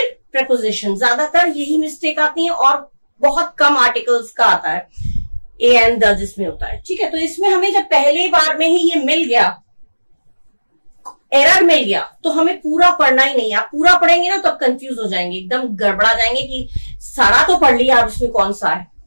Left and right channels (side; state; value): both; inverted; correlation -1.00